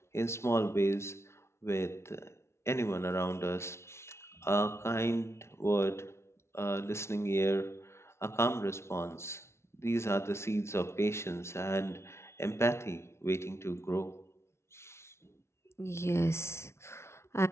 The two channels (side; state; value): right; late; 0.13 ms